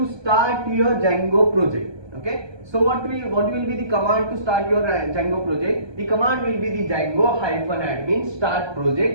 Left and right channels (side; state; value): left; late; 1.2 ms